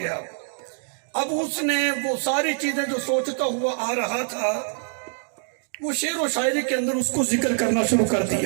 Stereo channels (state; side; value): silent; left; digital silence